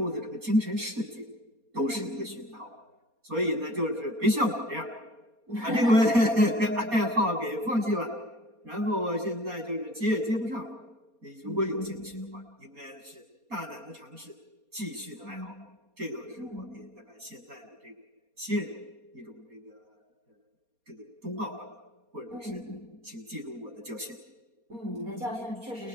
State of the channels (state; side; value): late; left; 4.2 ms